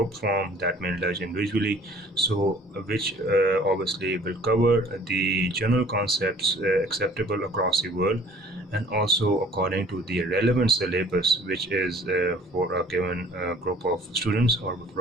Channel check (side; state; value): both; normal; correlation 0.52